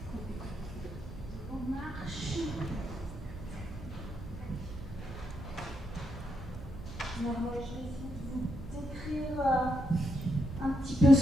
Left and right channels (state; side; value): noise; right; hum, 14 dB below the sound